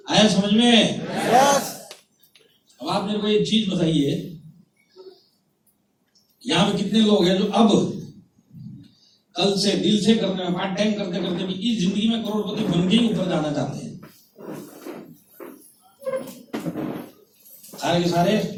आया समझ में? अब आप मेरे को एक चीज बताइए, यहाँ पे कितने लोग हैं जो अब कल से दिल से करने में, पार्ट टाइम करते करते भी इस जिंदगी में करोड़पति बन के ही ऊपर जाना चाहते हैं? सारे के सारे।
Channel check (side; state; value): both; identical; correlation 1.00